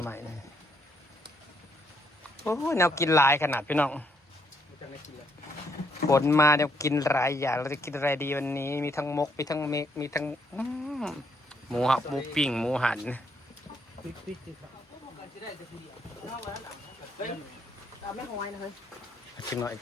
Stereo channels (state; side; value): normal; both; correlation 0.72